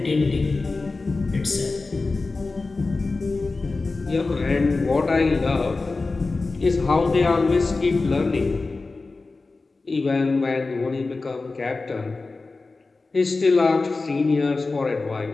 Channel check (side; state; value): right; quieter; 3.7 dB